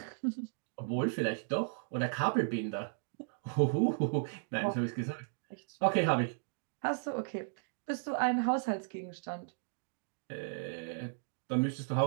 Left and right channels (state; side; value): silent; left; digital silence